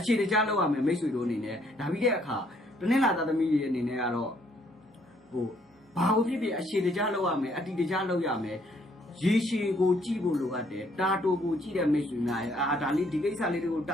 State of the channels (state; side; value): normal; both; correlation 0.66